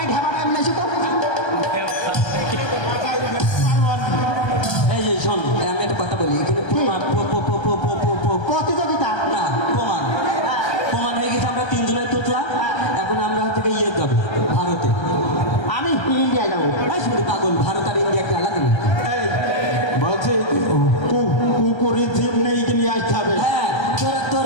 এই যে শোন আমি একটা কথা বলি এখানে প্রতিযোগিতা না প্রমাণ হয়ে গেছে আমরা তিনজনের তুতলা এখন আমরা থেকে ইয়ে যাবো ভারতে আমি ইন্ডিয়া যাবো শুধু পাগল ভারত আর ইন্ডিয়া একটা আলাদা নেই বলছে কুকুরের জিপ নেই নিয়ে আসতে হবে হ্যাঁ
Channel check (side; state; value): right; late; 1.3 ms